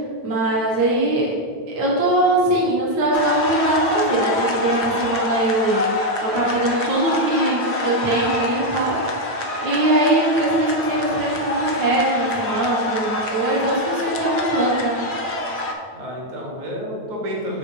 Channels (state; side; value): late; left; 8.8 ms